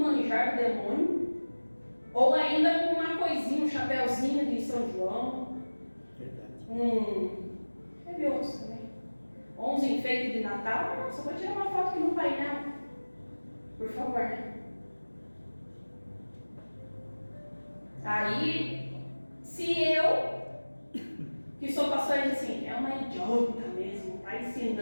do demônio, ou ainda com uma coisinha, um chapéuzinho de São João. Verdade. Teve outros também. Ou uns enfeites de Natal. Nossa, vou tirar uma foto aqui no painel. Por favor, né? Aí, se eu, que sou pastor, diz assim, é uma idiota mesmo, está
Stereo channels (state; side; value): inverted; both; correlation -1.00